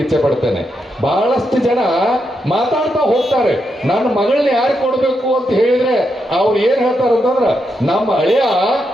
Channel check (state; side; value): normal; both; correlation 0.83